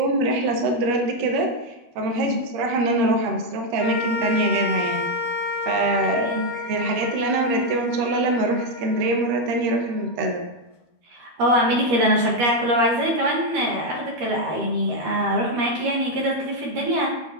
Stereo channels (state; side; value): late; left; 12 ms